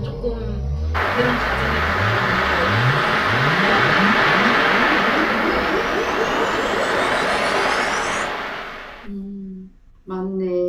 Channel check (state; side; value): identical; both; correlation 1.00